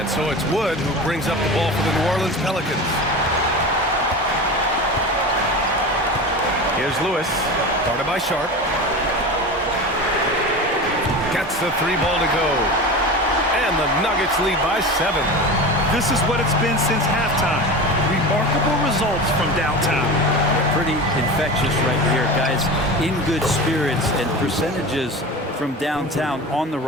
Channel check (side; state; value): both; normal; correlation 0.29